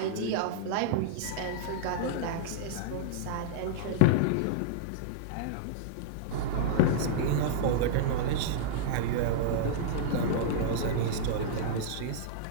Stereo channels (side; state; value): both; different; correlation -0.02